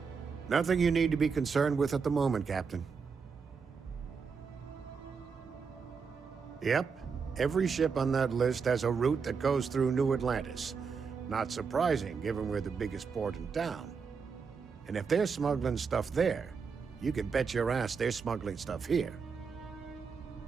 Nothing you need to be concerned with at the moment, Captain. Yep. Every ship on that list has a route that goes through New Atlantis. Not surprising, given we're the biggest port in town. And if they're smuggling stuff there, you can bet your ass they're smuggling stuff here.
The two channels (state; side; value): quieter; left; 5.6 dB